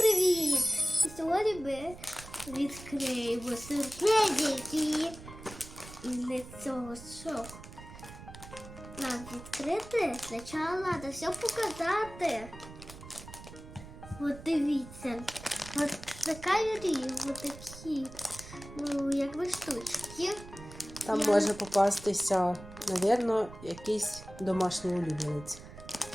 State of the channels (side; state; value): right; noise; rumble, 15 dB below the sound